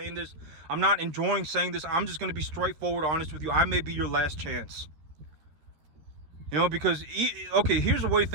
this. I'm not enjoying saying this. I'm just going to be straightforward honest with you. I may be your last chance. You know, because, okay, here's the way to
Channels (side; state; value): left; late; 13 ms